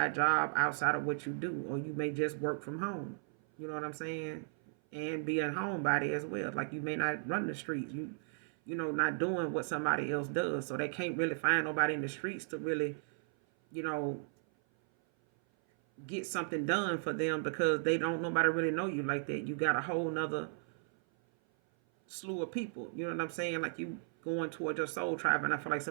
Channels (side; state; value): left; silent; 54 dB below the other